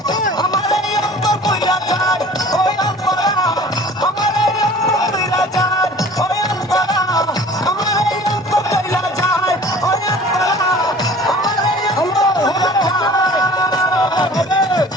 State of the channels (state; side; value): normal; both; correlation 0.46